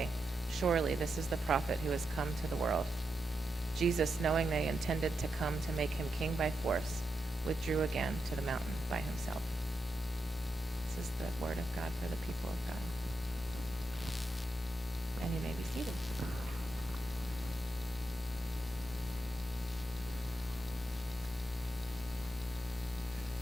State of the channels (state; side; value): normal; both; correlation 0.86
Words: "Surely this is the prophet who has come to the world." Jesus, knowing they intended to come to make him king by force, withdrew again to the mountain by himself. This is the word of God for the people of God. And you may be seated.